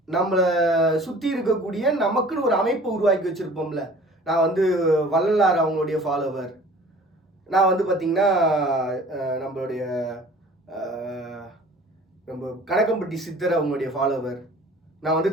நம்மளை சுற்றி இருக்கக்கூடிய நமக்குன்னு ஒரு அமைப்பை உருவாக்கி வச்சுருப்போம்ல. நான் வந்து வள்ளலார் அவங்களுடைய ஃபாலோவர், நான் வந்து பார்த்திங்கன்னா நம்மளுடைய நம்ம கணக்கம்பட்டி சித்தர் அவங்களுடைய ஃபாலோவர், நான்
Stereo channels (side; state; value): both; normal; correlation 0.48